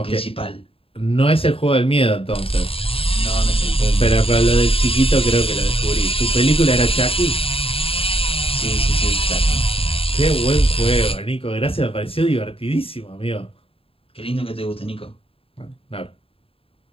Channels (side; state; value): right; late; 0.27 ms